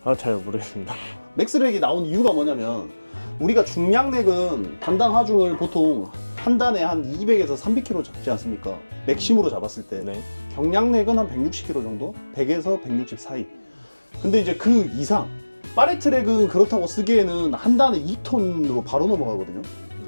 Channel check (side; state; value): both; inverted; correlation -1.00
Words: 아, 잘 모르겠습니다. 맥스렉이 나온 이유가 뭐냐면 우리가 중량렉은 단당 하중을 보통 한 단에 한 200에서 300kg 잡지 않습니까? 맥심으로 잡았을 때. 네. 경량렉은 한 160kg 정도? 100에서 160 사이. 근데 이제 그 이상 파레트랙은 그렇다고 쓰기에는 한 단에 2톤으로 바로 넘어가거든요.